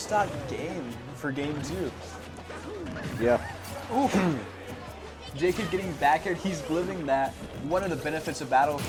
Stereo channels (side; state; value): both; identical; correlation 1.00